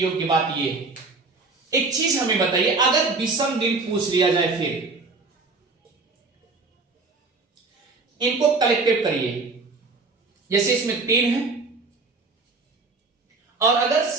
बात यह है, एक चीज हमें बताइए, अगर विषम दिन पूछ लिया जाए फिर इनको कलेक्टिव करिए। जैसे इसमें 3 है, और अगर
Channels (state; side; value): quieter; left; 3.9 dB